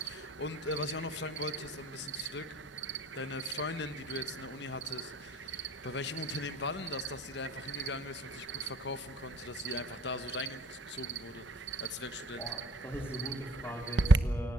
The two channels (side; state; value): both; normal; correlation 0.51